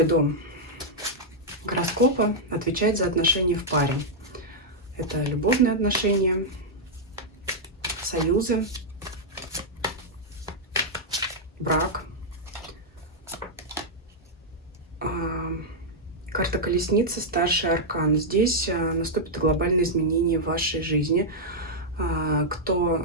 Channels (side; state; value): both; normal; correlation -0.05